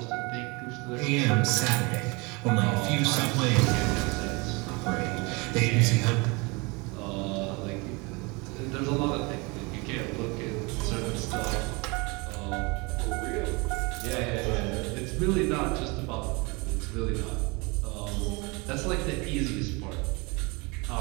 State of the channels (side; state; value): left; quieter; 27.7 dB